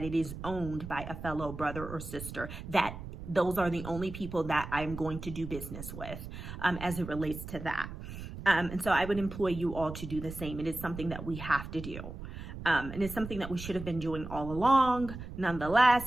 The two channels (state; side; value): noise; right; rumble, 10 dB below the sound